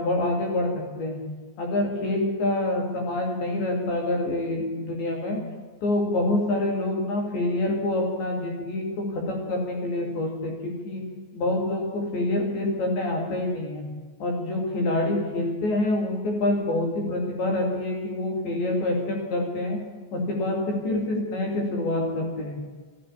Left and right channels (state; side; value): late; right; 14 ms